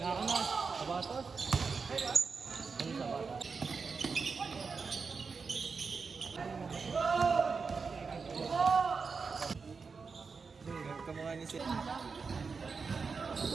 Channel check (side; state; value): left; quieter; 5.0 dB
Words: ka na. Sabatos. Ano sabatos? Kamukha ni Sir.